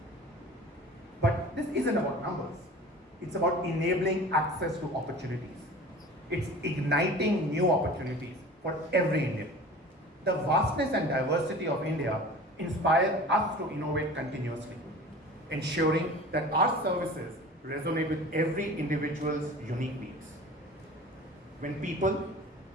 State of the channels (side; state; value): both; normal; correlation 0.40